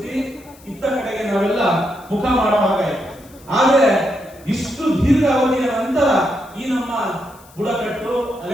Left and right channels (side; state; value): left; noise; hiss, 25 dB below the sound